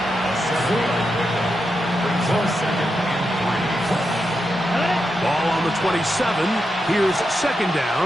Ball on the 27. Here's 2nd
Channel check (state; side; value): normal; both; correlation 0.86